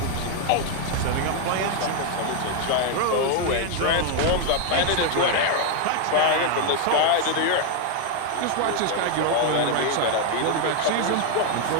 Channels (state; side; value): different; both; correlation 0.00